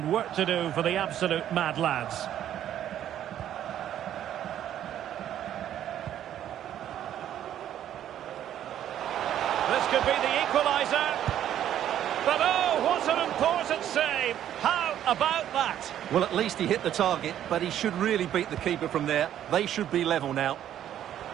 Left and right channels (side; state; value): left; quieter; 11.0 dB